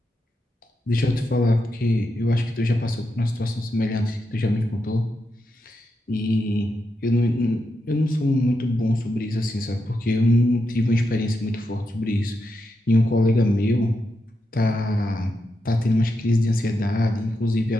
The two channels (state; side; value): normal; both; correlation 0.85